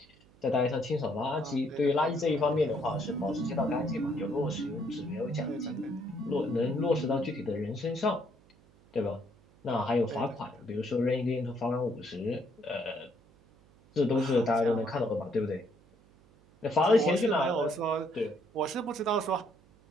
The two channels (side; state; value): right; noise; hum, 29 dB below the sound